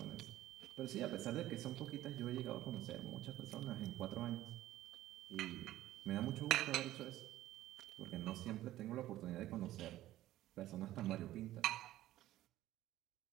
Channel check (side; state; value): left; quieter; 14.6 dB